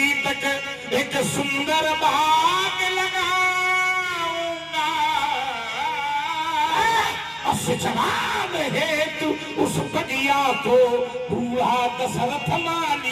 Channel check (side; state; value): both; identical; correlation 1.00